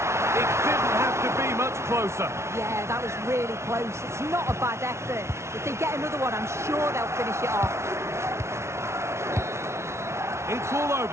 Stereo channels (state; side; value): late; left; 0.13 ms